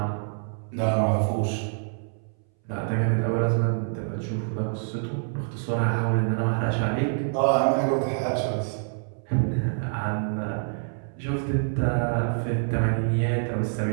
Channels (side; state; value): left; silent; 61 dB below the other